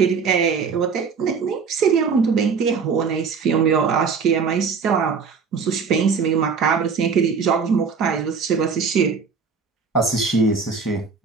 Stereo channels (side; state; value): left; quieter; 5.5 dB